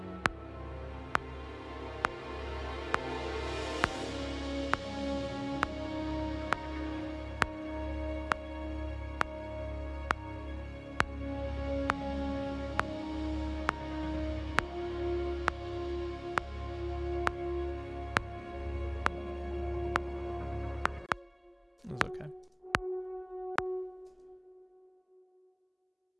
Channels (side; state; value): both; identical; correlation 1.00